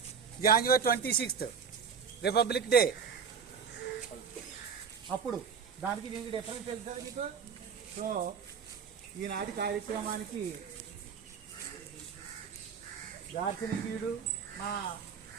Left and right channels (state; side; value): quieter; left; 6.5 dB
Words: January 26th, republic day. అప్పుడు దానికి దీనికి డిఫరెన్స్ తెలుసా మీకు? సో ఈనాటి కార్యక్రమానికి దార్శనికుడు, మా